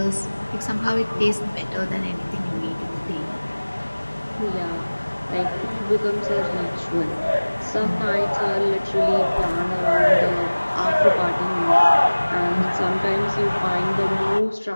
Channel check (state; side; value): inverted; both; correlation -1.00